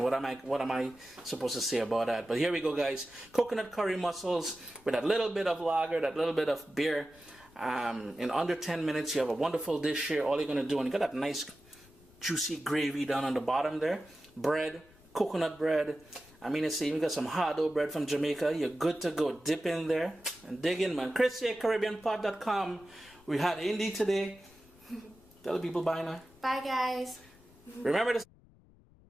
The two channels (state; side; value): noise; left; rumble, 26 dB below the sound